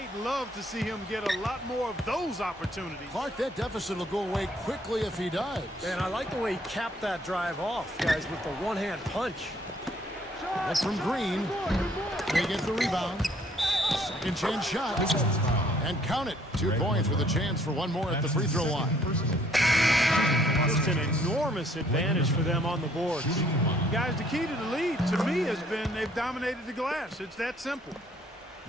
love to see him get a lot more of those opportunities. Clark, that deficit will go away quickly if he does. And I like the way he capped that drive off, guys, with the one-hand punch. That's from Green. They get the rebound. 2nd chance shot. And count it. 2 points with a chance for one more at the free throw line. Just an enormous advantage for them on the boards. Guys, the key to the lead, to me, has been they've dominated the glass. It's that simple.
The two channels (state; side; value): normal; both; correlation 0.63